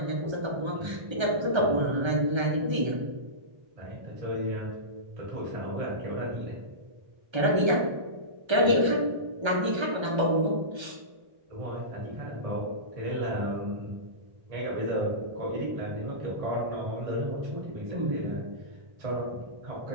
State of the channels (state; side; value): late; left; 1.3 ms